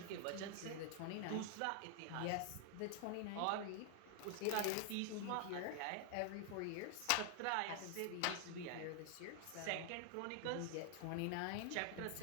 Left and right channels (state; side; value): different; both; correlation 0.00